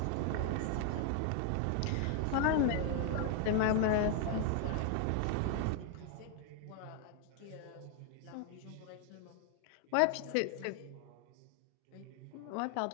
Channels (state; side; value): different; both; correlation 0.00